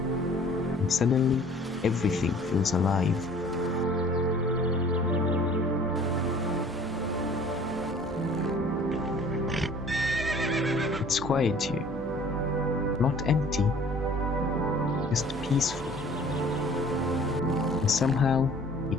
suddenly, everything feels alive. It's quiet here, not empty, just peaceful. And somehow,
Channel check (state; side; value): normal; both; correlation 0.51